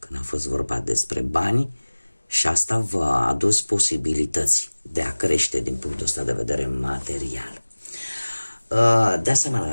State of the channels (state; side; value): inverted; both; correlation -1.00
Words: a fost vorba despre bani și asta v-a adus posibilități de a crește din punctul ăsta de vedere material. De asemenea,